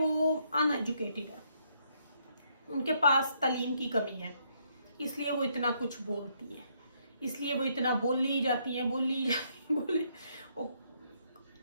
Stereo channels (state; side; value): inverted; both; correlation -0.72